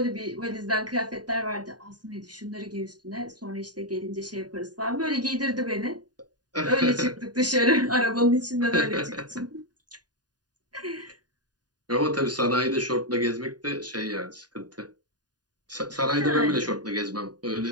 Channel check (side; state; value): left; late; 0.69 ms